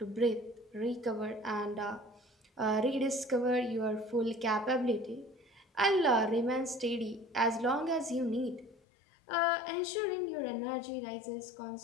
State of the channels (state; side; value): drops out; right; at 8.8 s